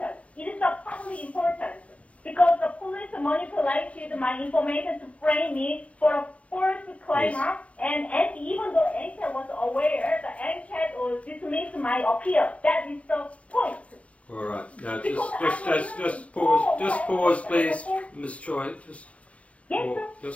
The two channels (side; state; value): right; late; 0.064 ms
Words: It is of public importance because the police manipulated my information to frame me for a false claim, Yes. and even though NCAT was aware, the NCAT dismissed my appeal. That is the point. All right. Now, Because just pause, please, Ms. Choi. Yes, sir.